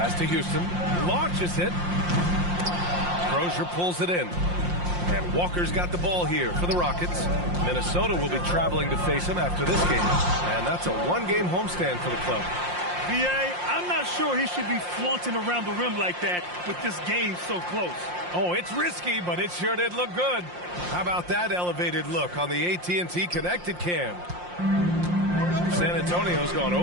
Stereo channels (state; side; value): late; left; 5.7 ms